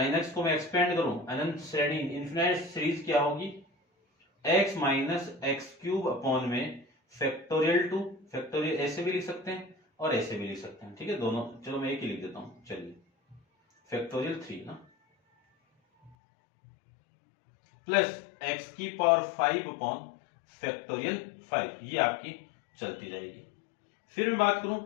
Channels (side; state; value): right; drops out; at 16.2 s